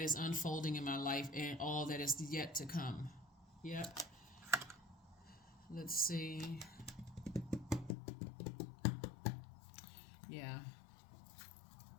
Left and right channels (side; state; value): right; drops out; at 7.9 s